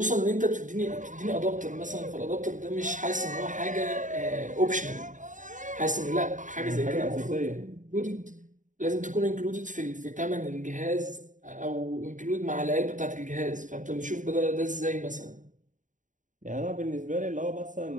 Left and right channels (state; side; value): late; left; 0.37 ms